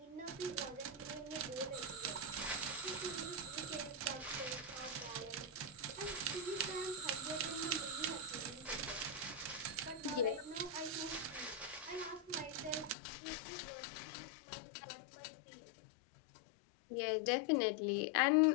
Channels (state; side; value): drops out; right; at 13.0 s